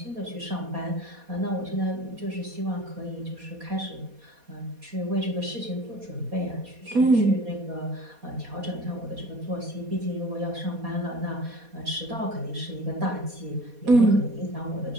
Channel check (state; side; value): late; left; 4.2 ms